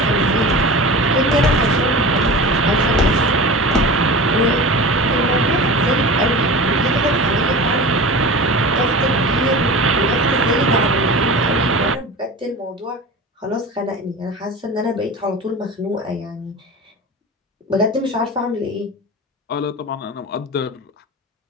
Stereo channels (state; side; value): normal; both; correlation 0.33